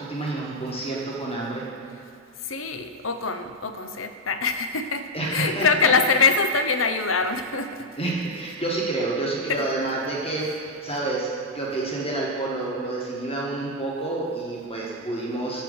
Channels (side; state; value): both; normal; correlation -0.01